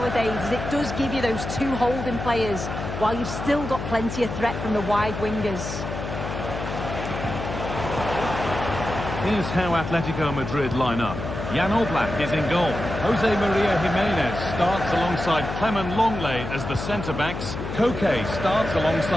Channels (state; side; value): noise; left; hum, 6 dB below the sound